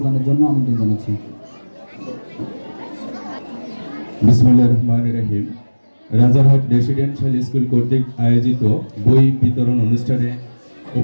জন্য আমন্ত্রণ জানাচ্ছি। বিসমিল্লাহির রহমানির রহিম। রাজারহাট রেসিডেন্সিয়াল স্কুল কর্তৃক আয়োজিত বই বিতরণ অনুষ্ঠানে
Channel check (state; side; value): inverted; both; correlation -1.00